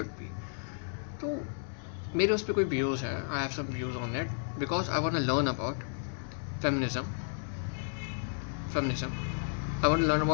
be. तो मेरे उस पर कोई व्यूज़ है, I have some views on it because I want to learn about feminism feminism I want to learn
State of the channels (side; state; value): right; silent; digital silence